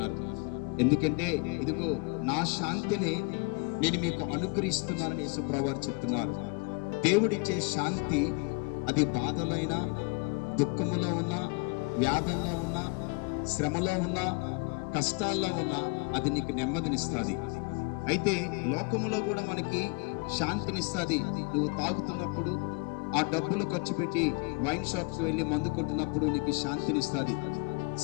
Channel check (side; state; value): right; quieter; 31.7 dB